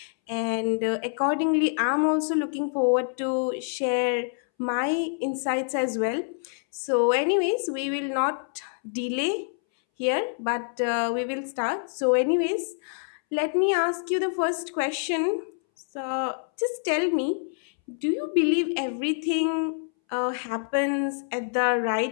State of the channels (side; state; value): right; silent; 61 dB below the other